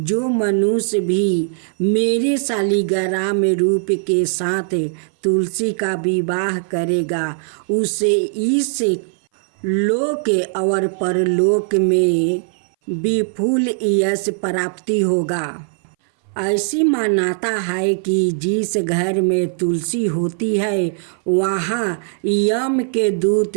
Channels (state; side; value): silent; left; 60 dB below the other